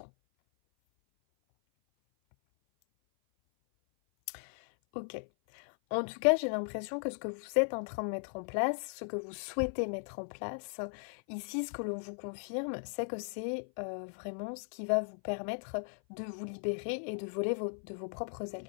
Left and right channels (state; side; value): silent; right; 53 dB below the other